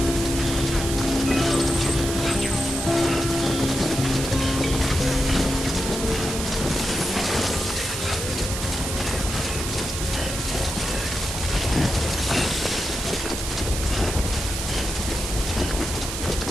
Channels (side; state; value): right; noise; hiss, 5 dB below the sound